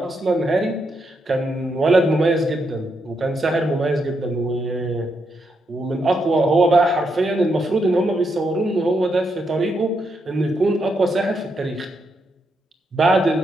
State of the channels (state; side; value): normal; both; correlation 0.80